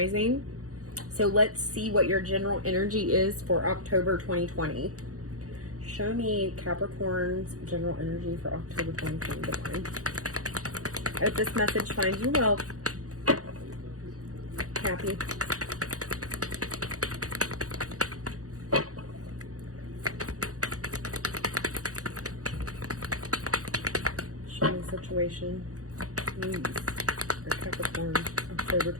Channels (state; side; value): late; left; 0.66 ms